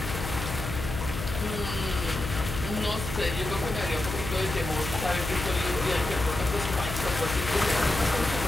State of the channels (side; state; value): left; noise; hum, 6 dB below the sound